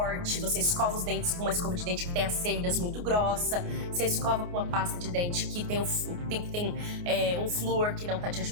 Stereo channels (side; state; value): left; late; 29 ms